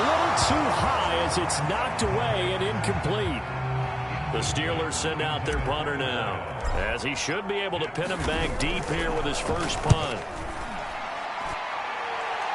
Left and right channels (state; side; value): identical; both; correlation 1.00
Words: little too high as it's knocked away and incomplete. The Steelers send out their punter now, as he should be able to pin him back deep here with his first punt.